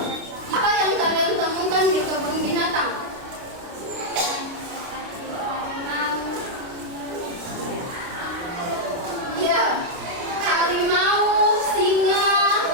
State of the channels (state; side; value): late; left; 29 ms